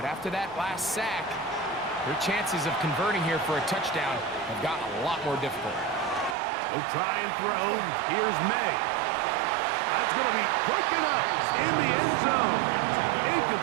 after that last sack, their chances of converting here for a touchdown have gotten a lot more difficult. They'll try and throw. Here's May. That's going to be broken up in the end zone.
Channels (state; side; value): drops out; left; at 6.4 s